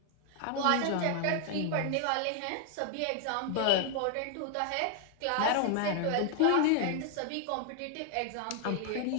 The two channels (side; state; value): both; different; correlation 0.00